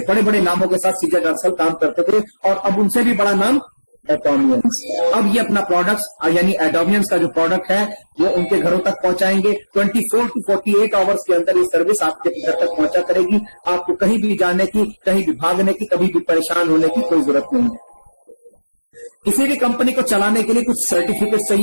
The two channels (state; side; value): inverted; both; correlation -1.00